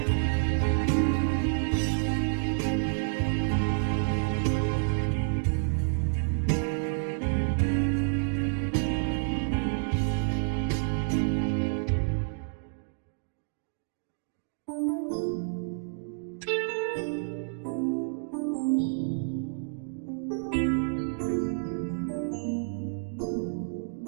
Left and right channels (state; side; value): silent; left; digital silence